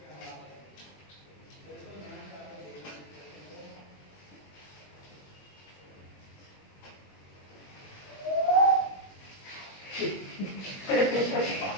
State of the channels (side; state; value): right; late; 21 ms